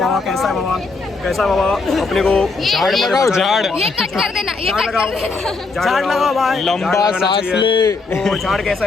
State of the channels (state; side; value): quieter; right; 4.0 dB